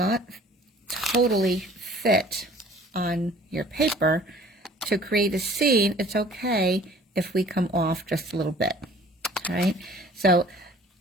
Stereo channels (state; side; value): normal; both; correlation 0.51